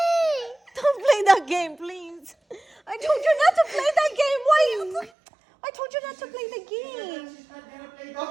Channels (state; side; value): drops out; left; at 5.1 s